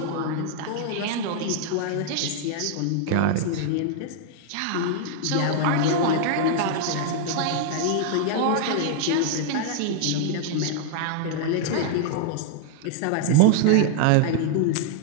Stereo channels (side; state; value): both; different; correlation 0.00